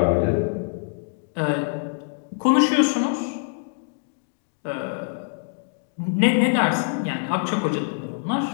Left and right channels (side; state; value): right; silent; digital silence